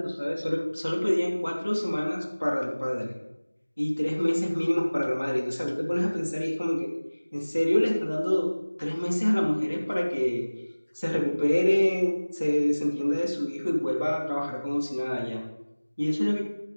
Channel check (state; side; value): inverted; both; correlation -1.00